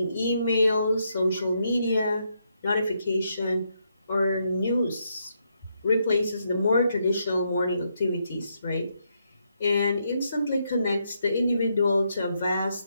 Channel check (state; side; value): inverted; both; correlation -0.78